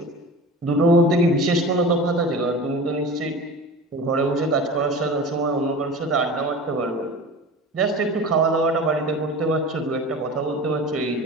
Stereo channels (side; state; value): both; normal; correlation 0.34